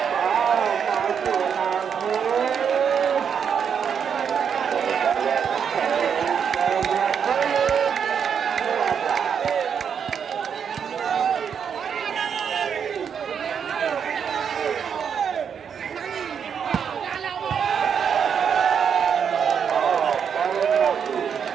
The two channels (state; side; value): quieter; left; 7.3 dB